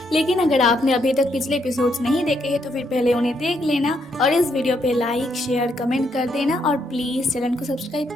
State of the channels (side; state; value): both; normal; correlation 0.75